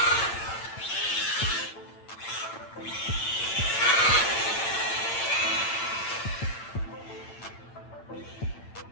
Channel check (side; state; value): right; late; 8.9 ms